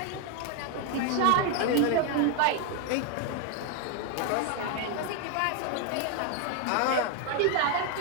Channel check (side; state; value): both; different; correlation 0.00